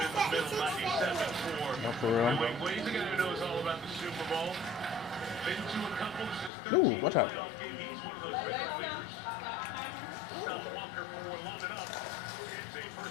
the middle, 97 for New England. He's a guy who knows all about the Super Bowl. Been to a couple. This is his 13th playoff game. He's one of those veteran leaders. Stopped Walker for long enough. It's a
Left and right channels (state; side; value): drops out; right; at 6.5 s